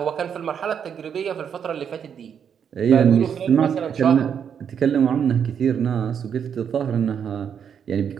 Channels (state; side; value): quieter; left; 7.8 dB